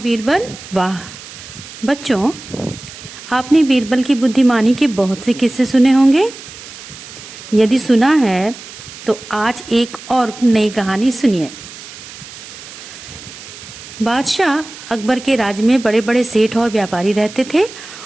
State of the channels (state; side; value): noise; right; hiss, 15 dB below the sound